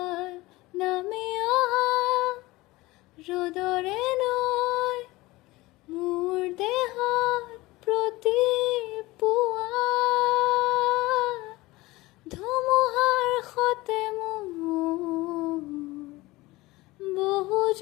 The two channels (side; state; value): right; quieter; 20.2 dB